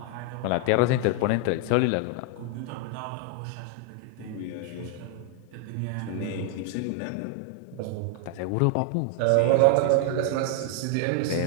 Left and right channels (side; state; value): both; different; correlation 0.00